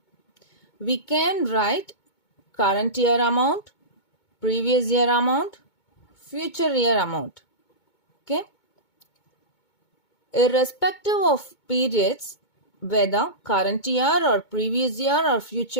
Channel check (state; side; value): late; right; 2.2 ms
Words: We can write current year amount, previous year amount, future year amount. Okay, irrespective of periods, whether current year or previous year or